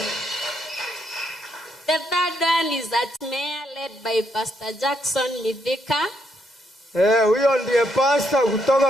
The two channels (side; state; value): both; normal; correlation 0.76